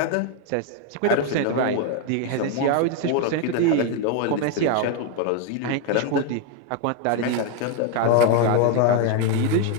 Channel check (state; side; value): different; both; correlation 0.01